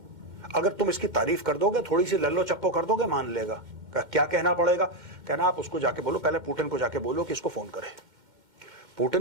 अगर तुम इसकी तारीफ कर दोगे, थोड़ी सी लल्लो चप्पो कर दोगे, मान लेगा। क्या कहना पड़ेगा? कहना आप उसको जाके बोलो, पहले पुतिन को जाके बोलो कि इसको फोन करे।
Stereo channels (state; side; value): late; left; 2.1 ms